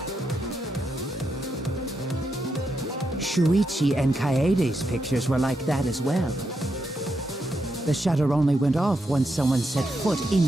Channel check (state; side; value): normal; both; correlation 0.83